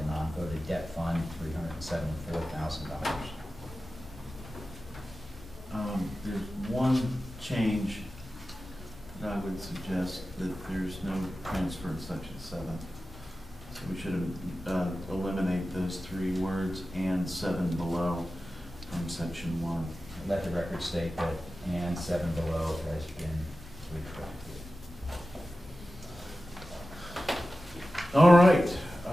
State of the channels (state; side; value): normal; both; correlation 0.94